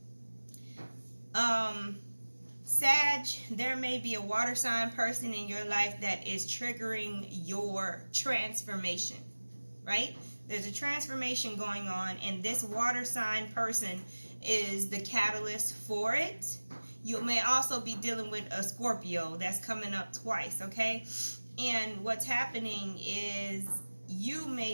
Sag, there may be a water sign person in your life that is triggering your transformation, right? There's a transformation going on, and this water sign person is the catalyst for it. You may also be dealing with a Scorpio that's coming up twice, okay? And what's happening is you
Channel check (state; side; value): inverted; both; correlation -1.00